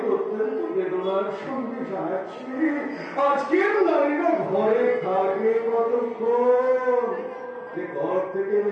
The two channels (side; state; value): both; identical; correlation 1.00